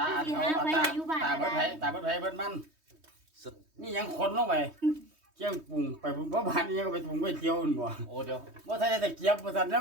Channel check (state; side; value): late; left; 3.2 ms